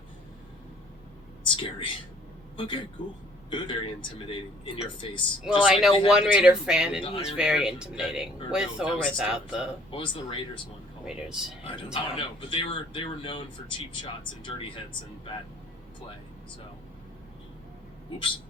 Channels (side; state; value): both; normal; correlation 0.58